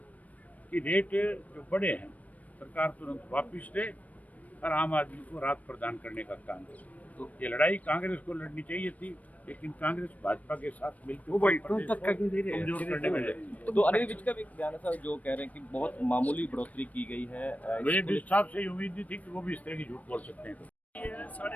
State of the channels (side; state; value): right; late; 0.071 ms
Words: कि रेट जो बड़े हैं सरकार तुरंत वापस ले और आम आदमी को राहत प्रदान करने का काम करे। तो ये लड़ाई कांग्रेस को लड़नी चाहिए थी, लेकिन कांग्रेस भाजपा के साथ मिलकर कमजोर करने में लगी। तो अनिल विज का भी एक बयान है सर, जो कह रहे हैं कि बहुत मामूली बढ़ोतरी की गई है। मुझे विज साहब से उम्मीद नहीं थी कि वो भी इस तरह की झूठ बोल सकते हैं।